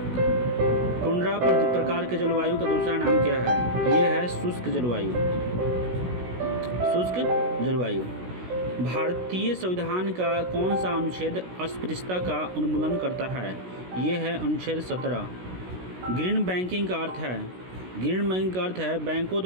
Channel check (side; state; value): left; late; 16 ms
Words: टुंड्रा प्रकार के जलवायु का दूसरा नाम क्या है? ये है शुष्क जलवायु। भारतीय संविधान का कौन सा अनुच्छेद अस्पृश्यता का उन्मूलन करता है? ये है अनुच्छेद 17। ग्रीन बैंकिंग का अर्थ है बैंकों